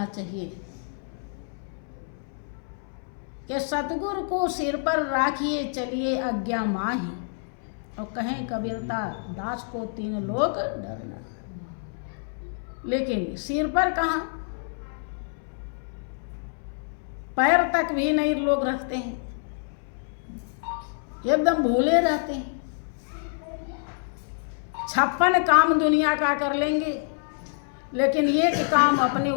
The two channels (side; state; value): right; silent; 60 dB below the other